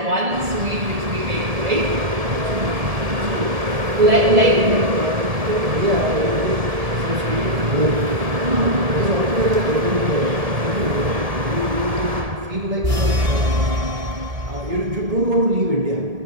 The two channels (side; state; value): left; late; 1.7 ms